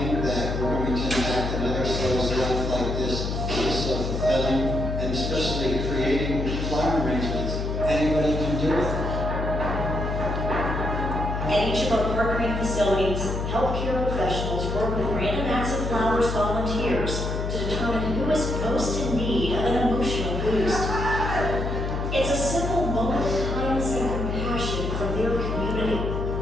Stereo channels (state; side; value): noise; left; hum, 2 dB below the sound